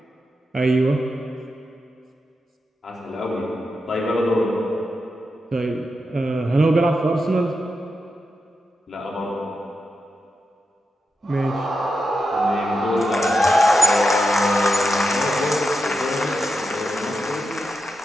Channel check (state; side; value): normal; both; correlation 0.88